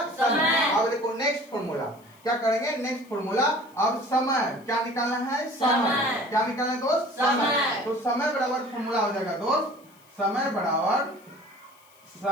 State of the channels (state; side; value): noise; left; hiss, 29 dB below the sound